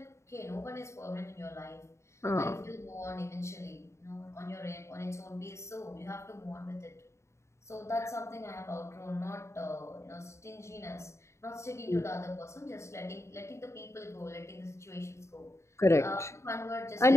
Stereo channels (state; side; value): late; right; 0.14 ms